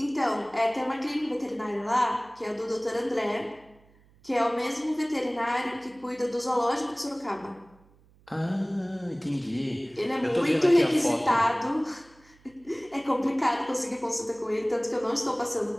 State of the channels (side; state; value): right; noise; hum, 29 dB below the sound